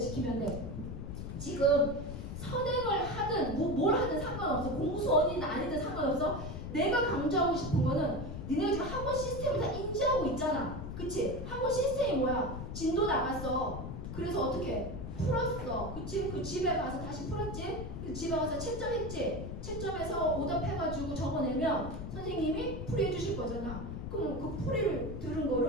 돼. 지금 선행을 하든 뭘 하든 상관없어. 공수원이든 아니든 상관없어. 내가 강조하고 싶은 거는 니네가 지금 학원 시스템을 다 인지하고 있잖아. 그치? 학원 시스템이 뭐야? 진도 나갔어. 그래서 어떻게? 풀었어. 그치? 그 집에 가서 다시 풀었지? 그 집에 가서 채점했지? 채점해서 오답해가지고 적어내면 선생님이 풀이해 주실 거잖아. 그럼 그 풀이를 들은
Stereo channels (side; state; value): left; noise; rumble, 7 dB below the sound